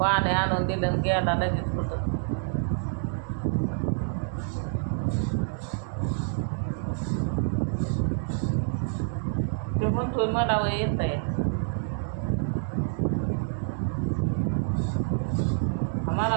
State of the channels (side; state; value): left; silent; 60 dB below the other